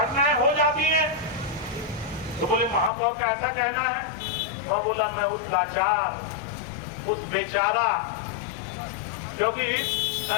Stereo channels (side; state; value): right; drops out; at 2.9 s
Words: हो जाती हैं। तो बोले महापौर का ऐसा कहना है। वह बोला मैं उस लाचार, उस बेचारा, क्योंकि